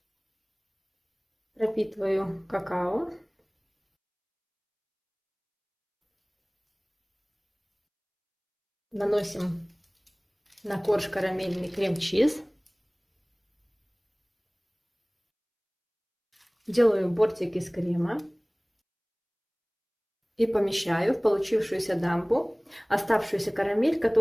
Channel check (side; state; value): both; identical; correlation 1.00